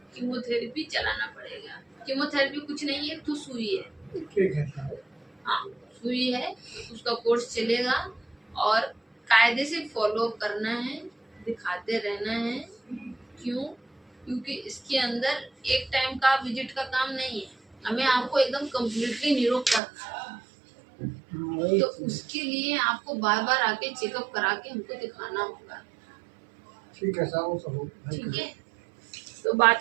कीमोथेरेपी चलाना पड़ेगा। कीमोथेरेपी कुछ नहीं है, तो सुई है। ठीक है। हाँ, सुई है, उसका कोर्स चलेगा और कायदे से फॉलो करना है, दिखाते रहना है। क्यों? क्योंकि इसके अंदर एक टाइम का विजिट का काम नहीं है, हमें आपको एकदम कम्प्लीटली निरोग करना है। तो उसके लिए आपको बार बार आके चेकअप करा के हमको दिखाना होगा। ठीक है साहब, ठीक है, तो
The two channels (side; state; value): left; drops out; at 19.8 s